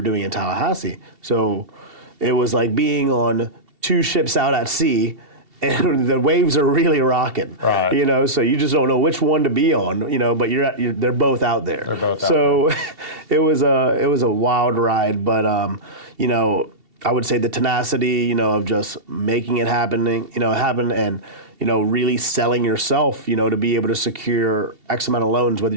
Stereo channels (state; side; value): late; left; 2.7 ms